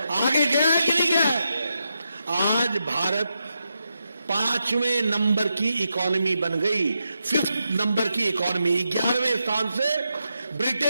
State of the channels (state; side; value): inverted; both; correlation -0.86